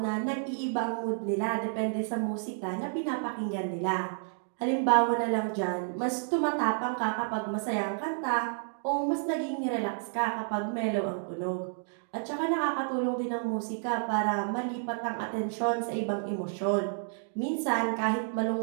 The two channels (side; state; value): left; silent; digital silence